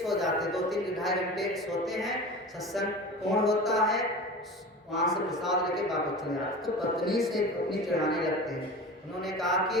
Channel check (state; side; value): normal; both; correlation 0.34